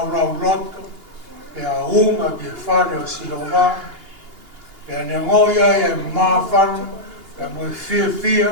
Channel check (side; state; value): left; late; 2.8 ms